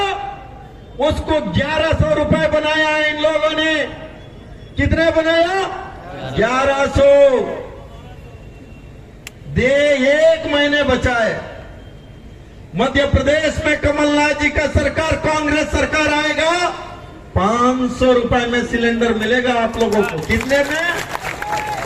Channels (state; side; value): identical; both; correlation 1.00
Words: उसको 1100 रुपए बनाया है इन लोगों ने। कितने बनाया? 1100। दे 1 महीने बचा है। मध्य प्रदेश में कमलनाथ जी का सरकार, कांग्रेस सरकार आएगा, 500 रुपए में सिलेंडर मिलेगा आप लोगों को। कितने में?